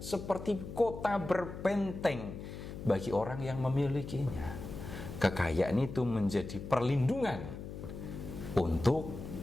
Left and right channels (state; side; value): noise; left; hum, 10 dB below the sound